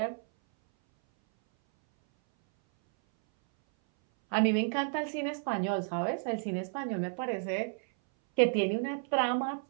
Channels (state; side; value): silent; left; 57 dB below the other